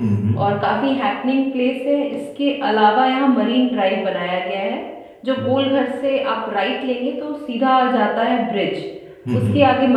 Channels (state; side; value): identical; both; correlation 1.00